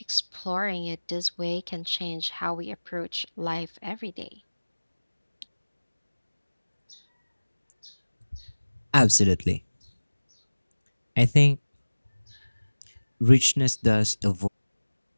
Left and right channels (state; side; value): inverted; both; correlation -1.00